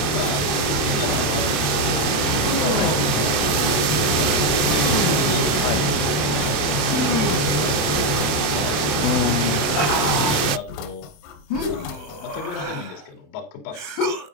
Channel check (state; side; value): late; right; 27 ms